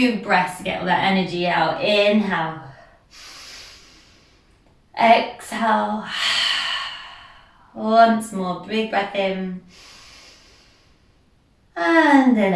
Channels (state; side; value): identical; both; correlation 1.00